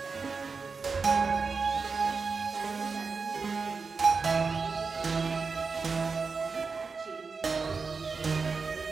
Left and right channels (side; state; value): left; quieter; 4.8 dB